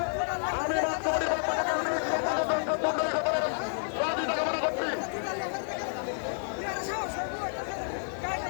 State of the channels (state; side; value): silent; right; digital silence